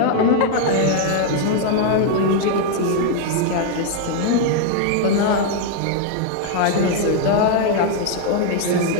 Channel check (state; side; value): different; both; correlation 0.00